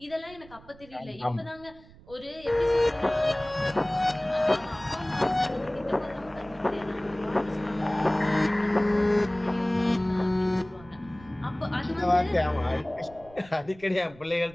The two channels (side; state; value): right; noise; rumble, 22 dB below the sound